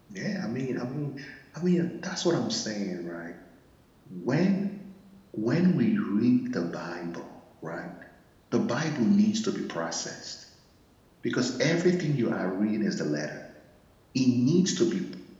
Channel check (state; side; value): identical; both; correlation 1.00